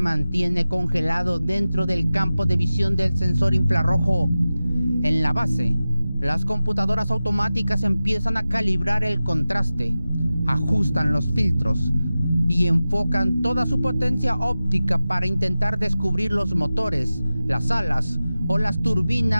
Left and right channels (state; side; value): inverted; both; correlation -0.95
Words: congelado dentro del campo de visión del sensor infrarrojo. En la base, las computadoras automáticas empiezan a calibrar el contraste, ajustan los filtros y enfocan toda su potencia óptica para intentar descubrir los motores, las alas o las